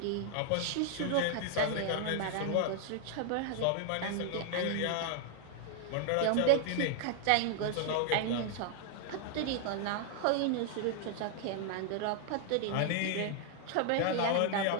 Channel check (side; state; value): both; different; correlation 0.00